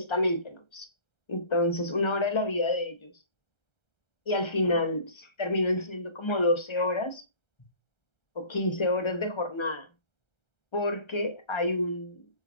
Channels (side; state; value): right; late; 1.3 ms